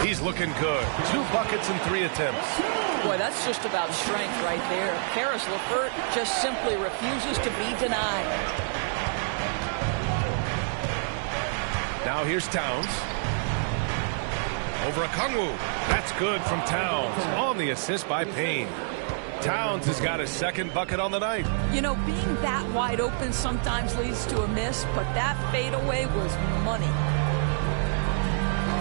He's looking good. 2 buckets and 3 attempts. Boy, that's just about strength right there. Karis LeVert just simply refuses to be denied. Now here's Towns. Over Okongwu. That's good from Towns. On the assist by Payne. Towns has got his second bucket on the night. You know, being that wide open sometimes leads to a miss, but that fadeaway was money.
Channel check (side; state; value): left; silent; digital silence